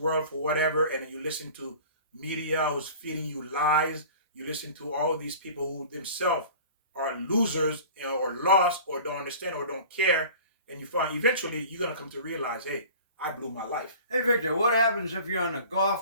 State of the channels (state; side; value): inverted; both; correlation -0.42